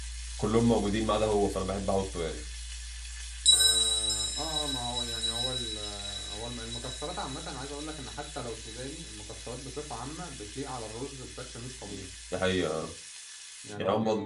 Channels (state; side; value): identical; both; correlation 1.00